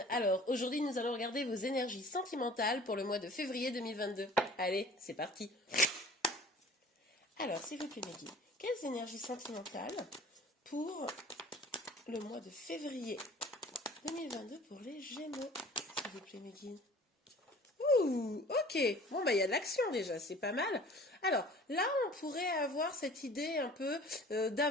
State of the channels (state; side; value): normal; both; correlation 0.47